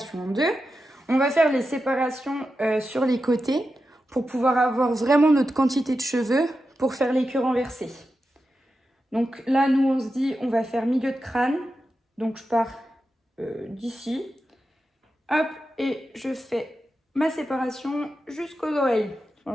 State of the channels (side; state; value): both; normal; correlation 0.90